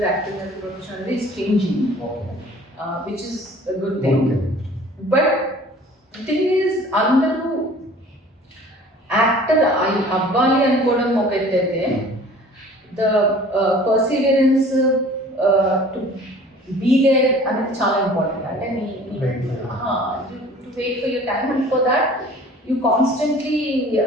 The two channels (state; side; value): normal; both; correlation 0.48